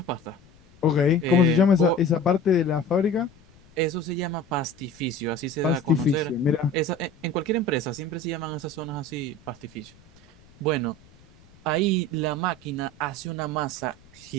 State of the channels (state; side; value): noise; left; rumble, 27 dB below the sound